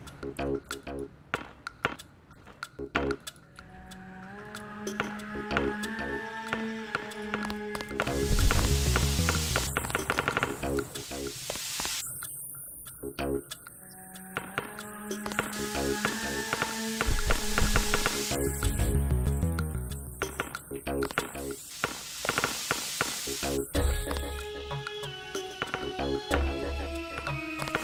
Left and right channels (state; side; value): identical; both; correlation 1.00